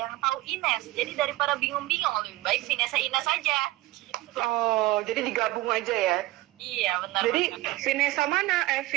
tahu Ines. Jadi daripada bingung-bingung, lebih baik Vanessa Ines aja. Gitu. Oh, jadi digabung aja ya? Iya, benar. Jadi Vanessa mana?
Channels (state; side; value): quieter; left; 17.8 dB